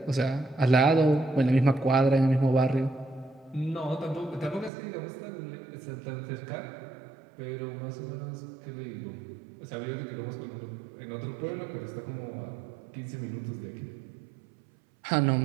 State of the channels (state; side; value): drops out; left; at 4.7 s